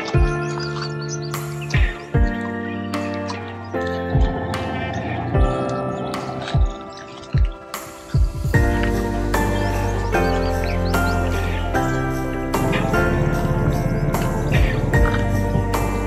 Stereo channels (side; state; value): both; identical; correlation 1.00